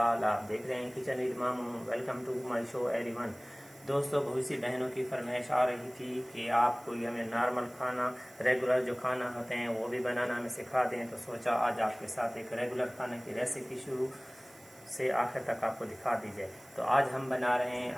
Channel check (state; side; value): noise; right; hiss, 24 dB below the sound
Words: आप देख रहे हैं kitchen with Mamu. Welcome to my show everyone. दोस्तों, बहुत सी बहनों की फरमाइश आ रही थी कि आप कोई हमें नॉर्मल खाना, रेगुलर जो खाना होते हैं वो भी बनाना हमें सिखा दें। तो सोचा आज आपके साथ एक रेगुलर खाने की रेसिपी शुरू से आखिर तक आपको दिखा दी जाए। तो आज हम बना रहे हैं